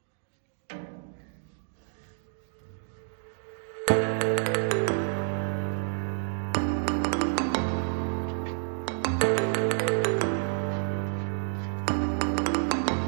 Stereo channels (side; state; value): left; silent; 56 dB below the other